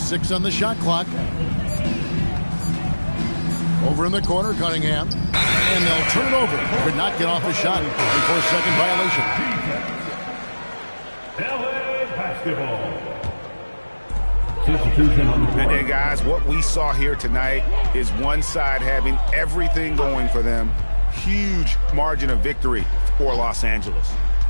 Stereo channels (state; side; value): inverted; both; correlation -1.00